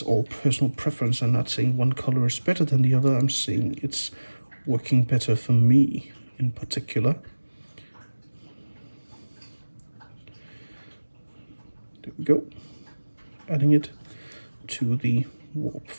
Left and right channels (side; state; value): both; inverted; correlation -1.00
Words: all personal preference. I'm not saying one color is better than the other. I'm saying it's working better for me in particular. There we go. Adding it to the warp